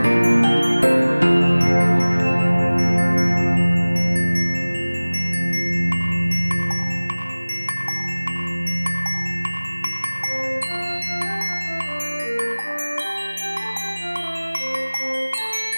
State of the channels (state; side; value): inverted; both; correlation -1.00